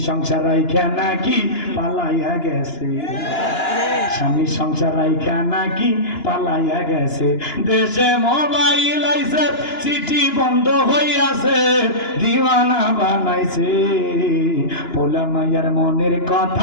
সংসার রাইখা নাকি পালাইয়া গেছে, স্বামী সংসার রাইখা নাকি পালাইয়া গেছে। দেশে মোবাইল আইছে চিঠি বন্ধ হইয়াছে, দিওয়ানা বানাইছে পোলা মাইয়ার মনের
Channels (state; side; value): late; right; 2.9 ms